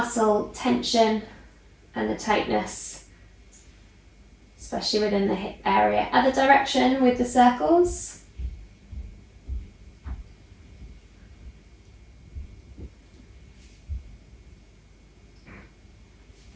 tension and the tightness, especially within the hip area. Other direction with the circles.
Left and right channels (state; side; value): identical; both; correlation 1.00